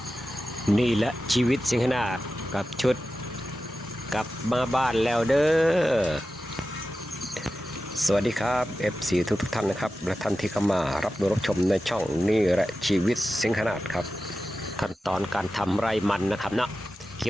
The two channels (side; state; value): both; normal; correlation 0.93